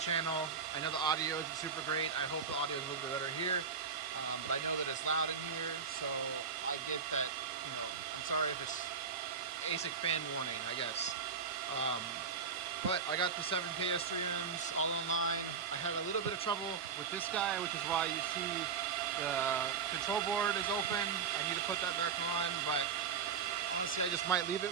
I know the audio isn't super great. I hope the audio is a little bit better here. But I know that it's loud in here, so I get that, I'm sorry if it's ASIC fan warning, I guess. But I got the 7 KS3Ms all online. I had a little bit of trouble with this guy, which is why you see the control board is open. I need to put that back on, but honestly, I just might leave it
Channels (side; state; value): left; quieter; 6.1 dB